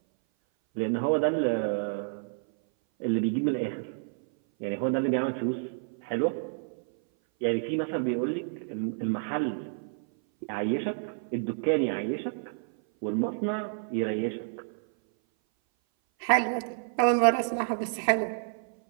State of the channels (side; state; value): left; silent; 57 dB below the other